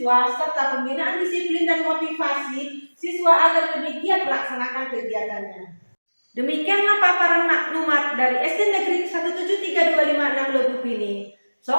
serta pembinaan disiplin dan motivasi siswa agar lebih giat melaksanakan kegiatannya. Demikianlah paparan maklumat dari SD Negeri 17325 Lebuk ini.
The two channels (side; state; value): both; inverted; correlation -1.00